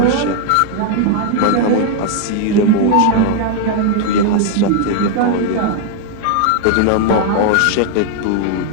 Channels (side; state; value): both; different; correlation 0.00